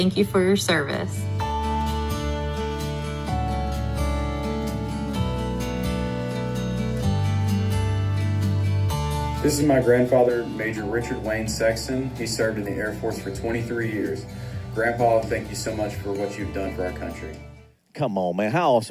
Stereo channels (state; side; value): identical; both; correlation 1.00